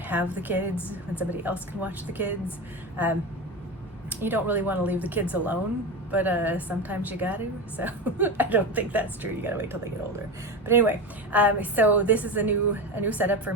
the kids, when somebody else can watch the kids. You don't really want to leave the kids alone, but sometimes you got to. So I don't think that's true. You got to wait till they get older. But anyway, so this is a new setup for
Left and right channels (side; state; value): both; normal; correlation 0.22